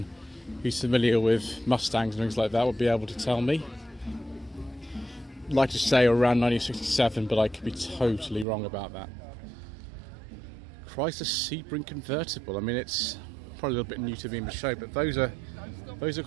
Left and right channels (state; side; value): drops out; left; at 8.5 s